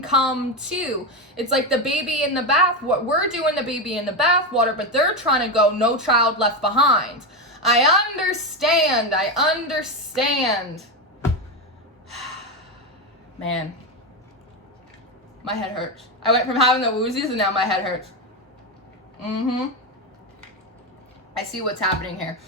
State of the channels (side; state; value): both; normal; correlation 0.13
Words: too. It's like the baby in the bath. What we're doing, the baby in the bath water, but they're trying to go no child left behind. I understand. Man, my head hurts. I went from having the woozies and now my head hurts. I see what's happening here.